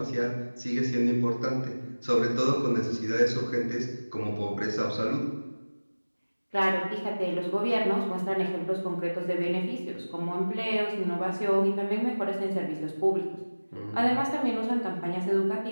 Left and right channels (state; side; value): inverted; both; correlation -1.00